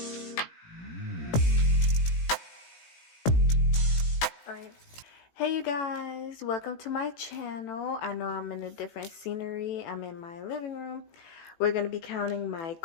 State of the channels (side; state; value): right; late; 17 ms